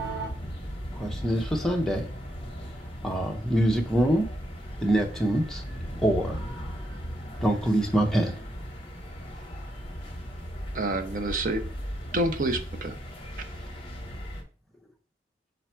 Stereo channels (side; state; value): both; normal; correlation 0.78